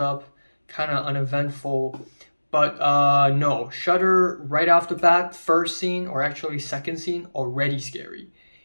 up, kind of uneventful. But no, Shudder right off the bat, first scene or actually second scene, already scary.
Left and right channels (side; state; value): both; inverted; correlation -1.00